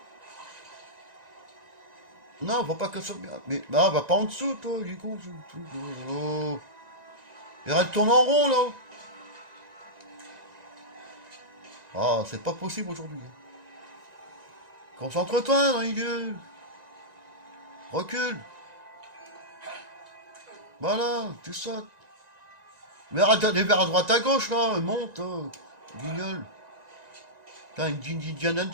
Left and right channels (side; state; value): left; late; 1.9 ms